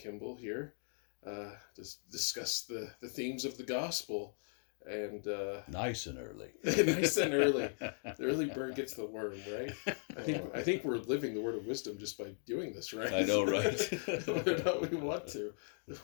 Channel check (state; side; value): silent; right; 52 dB below the other